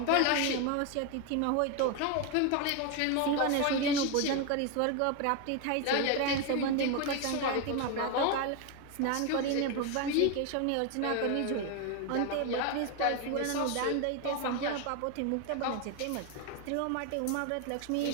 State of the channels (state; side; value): different; both; correlation 0.01